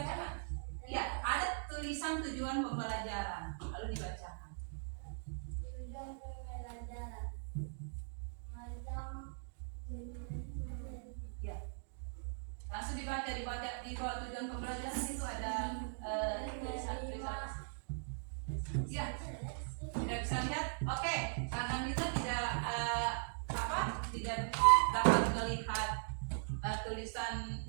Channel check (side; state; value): left; silent; digital silence